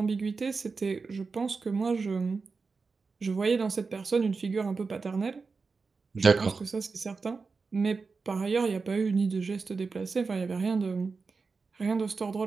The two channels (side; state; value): left; quieter; 4.5 dB